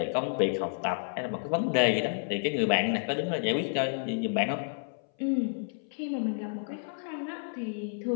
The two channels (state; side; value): silent; right; 58 dB below the other